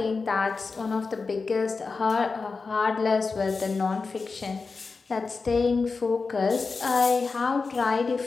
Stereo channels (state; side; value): quieter; right; 4.4 dB